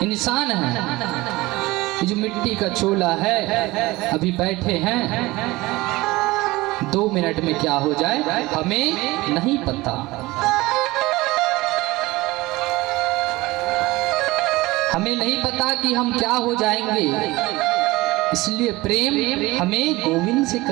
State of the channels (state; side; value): quieter; left; 20.2 dB